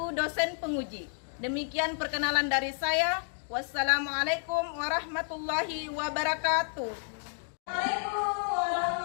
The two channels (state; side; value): silent; right; 57 dB below the other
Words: dosen penguji. Demikian perkenalan dari saya. Wassalamualaikum warahmatullahi wabarakatuh.